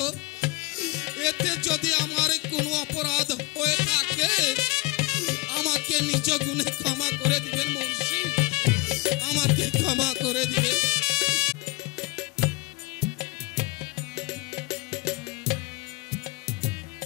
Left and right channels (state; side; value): quieter; right; 22.1 dB